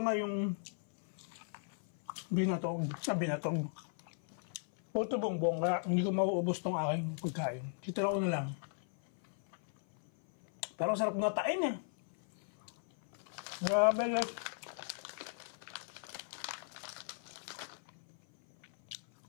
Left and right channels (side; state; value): right; silent; 53 dB below the other